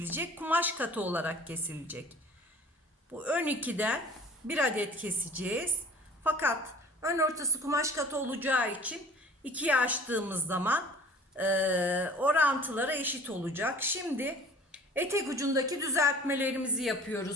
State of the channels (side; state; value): both; normal; correlation 0.47